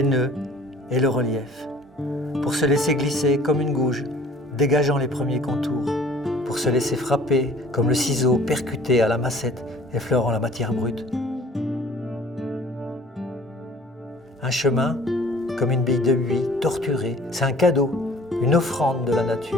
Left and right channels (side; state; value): both; normal; correlation 0.51